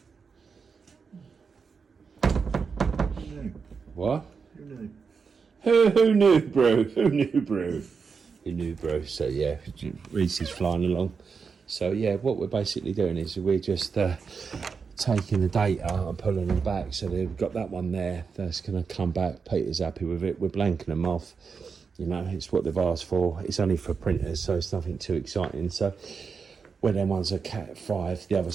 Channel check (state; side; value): quieter; left; 5.5 dB